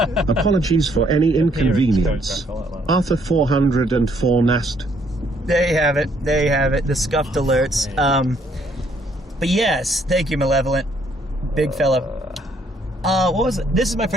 Apologies for any inconvenience. Arthur 404 Nast. There you have it. The scuffed alerts. But yes, thank you, Malevolent. Big fella. What was it? This is my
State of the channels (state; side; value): normal; both; correlation 0.67